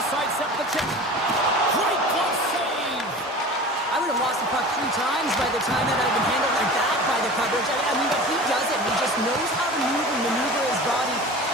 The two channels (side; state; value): both; normal; correlation 0.37